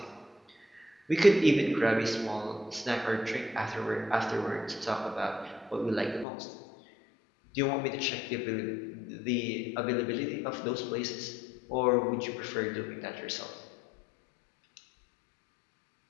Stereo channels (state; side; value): drops out; right; at 6.2 s